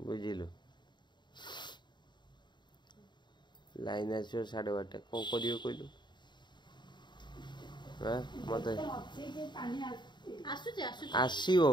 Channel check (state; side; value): late; right; 0.22 ms